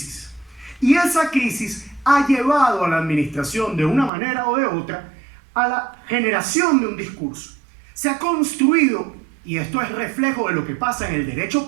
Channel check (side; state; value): left; drops out; at 4.1 s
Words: Y esa crisis ha llevado a la administración de una manera o de otra a la generación de un discurso. Se ha construido, y esto es reflejo de lo que pasa en el derecho